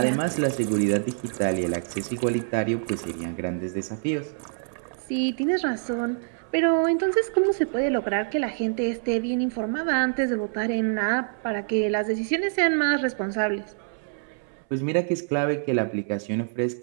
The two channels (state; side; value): silent; left; 61 dB below the other